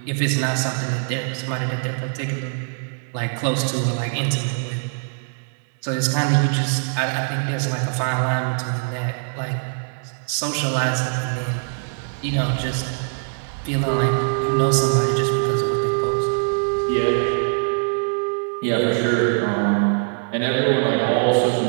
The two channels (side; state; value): left; silent; digital silence